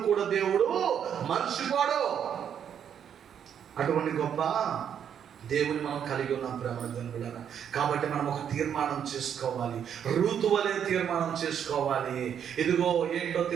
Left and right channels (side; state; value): left; quieter; 8.6 dB